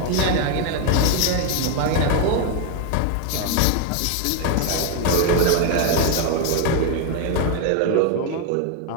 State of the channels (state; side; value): different; both; correlation 0.01